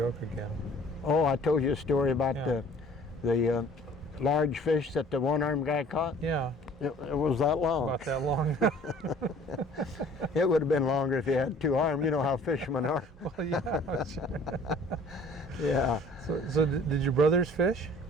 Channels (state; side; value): normal; both; correlation 0.52